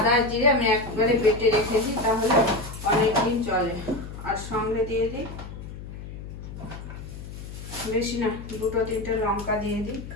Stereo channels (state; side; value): noise; left; hum, 11 dB below the sound